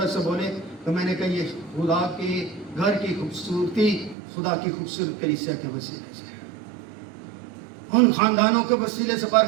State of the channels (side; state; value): left; drops out; at 4.2 s